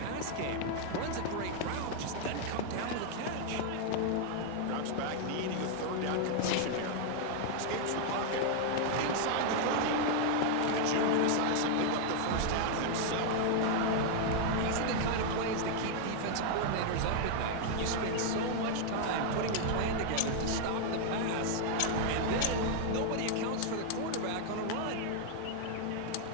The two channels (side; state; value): both; different; correlation 0.00